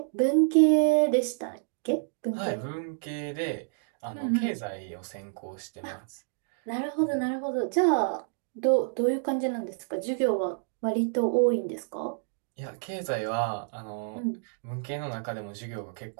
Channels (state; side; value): silent; left; digital silence